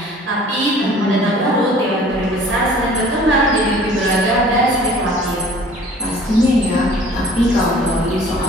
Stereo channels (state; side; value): normal; both; correlation 0.50